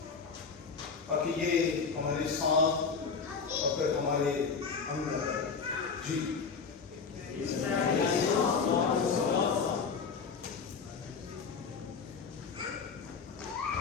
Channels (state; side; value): quieter; right; 5.4 dB